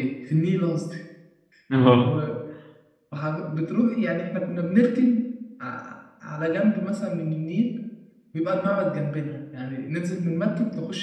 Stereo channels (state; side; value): identical; both; correlation 1.00